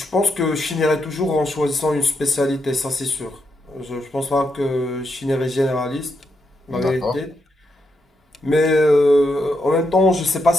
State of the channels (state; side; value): normal; both; correlation 0.82